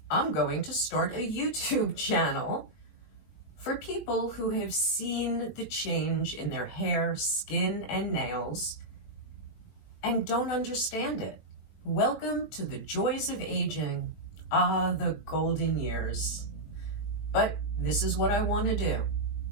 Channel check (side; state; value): right; late; 19 ms